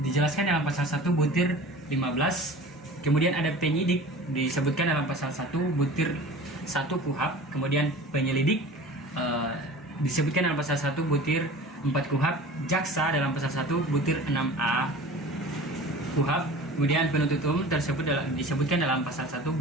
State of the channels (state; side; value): normal; both; correlation 0.40